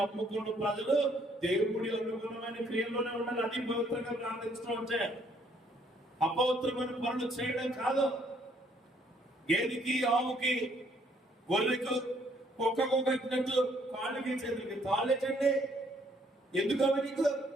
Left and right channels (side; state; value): both; normal; correlation 0.66